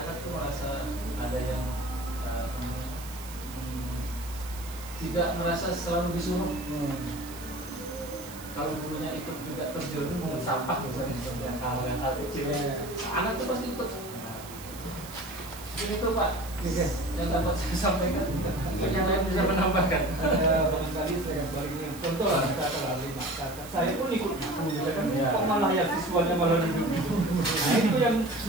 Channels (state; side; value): noise; right; hiss, 15 dB below the sound